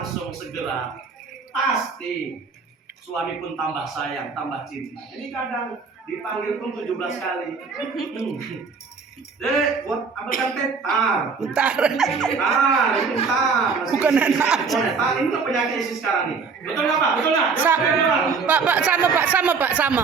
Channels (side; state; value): left; quieter; 5.1 dB